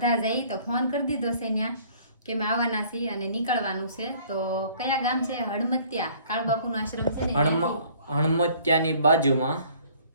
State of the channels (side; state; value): both; inverted; correlation -0.56